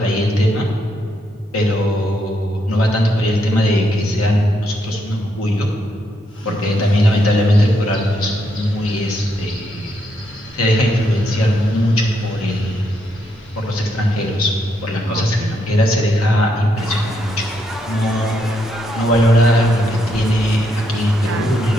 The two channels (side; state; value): both; normal; correlation 0.77